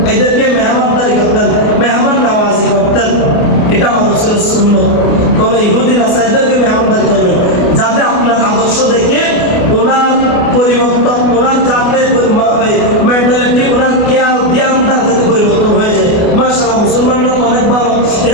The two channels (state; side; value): late; right; 29 ms